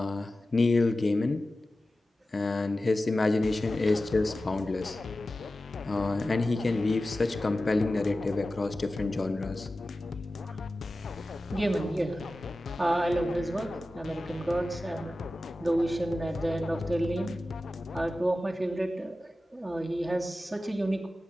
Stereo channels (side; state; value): both; normal; correlation 0.95